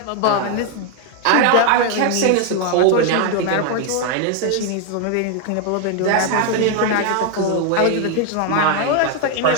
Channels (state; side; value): different; both; correlation 0.01